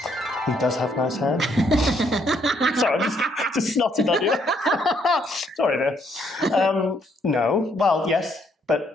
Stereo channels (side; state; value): both; normal; correlation 0.70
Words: He does have nice hair. Sorry, I just snotted on you. Sorry there. No. Well, yes, but